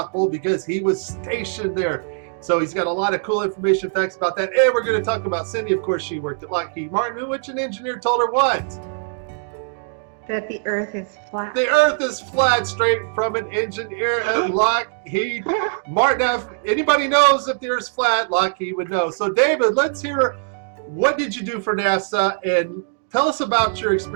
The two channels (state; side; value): silent; left; digital silence